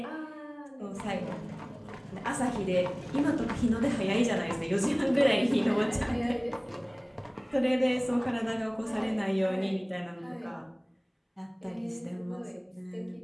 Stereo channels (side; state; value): both; identical; correlation 1.00